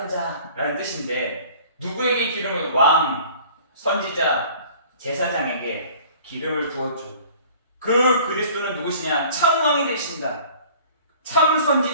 자라는 뜻인데, 누구에게 기름을? 왕, 선지자, 제사장에게 기름을 부었죠. 그 그리스도는 누구시냐? 참왕이 되신다. 참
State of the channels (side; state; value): both; inverted; correlation -0.49